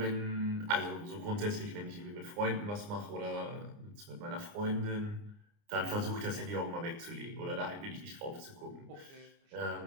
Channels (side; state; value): left; late; 29 ms